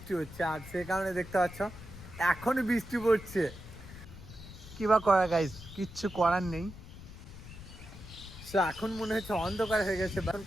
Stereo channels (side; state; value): left; noise; rumble, 15 dB below the sound